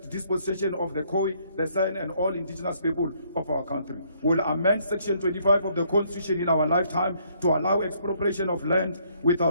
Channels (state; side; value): inverted; both; correlation -0.67